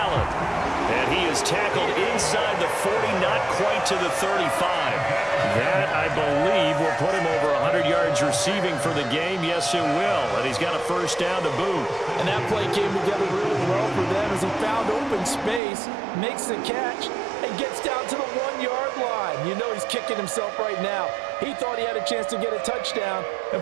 And he is tackled inside the 40, not quite to the 35. That, I believe, will put him over 100 yards receiving for the game. Yes, it will. And he's got a 1st down to boot. And that play came together really well for them as he found open space, makes the catch, and gets down to the 1-yard line. You know he's kicking himself right now. He thought he had a chance to get a touchdown and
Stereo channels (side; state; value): left; drops out; at 15.6 s